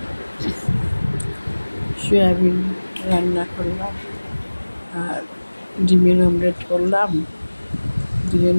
সয়াবিন রান্না করলাম আর ডিমের অমলেট করলাম,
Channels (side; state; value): both; inverted; correlation -1.00